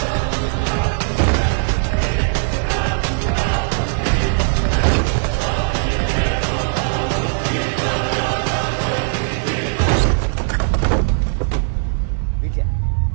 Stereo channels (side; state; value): left; silent; 67 dB below the other